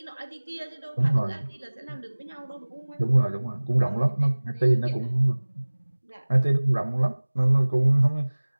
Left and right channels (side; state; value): both; inverted; correlation -1.00